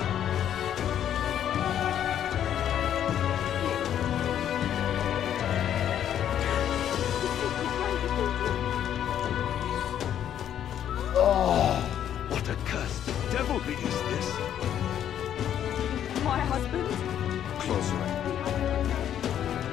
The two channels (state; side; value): quieter; right; 10.1 dB